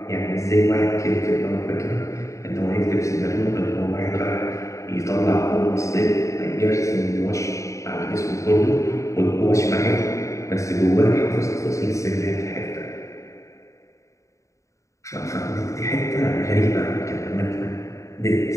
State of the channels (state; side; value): late; right; 0.15 ms